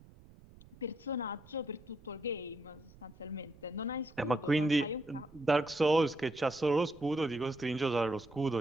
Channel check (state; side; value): noise; right; rumble, 23 dB below the sound